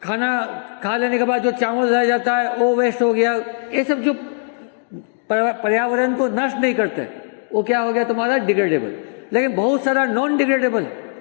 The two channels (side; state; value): right; silent; 57 dB below the other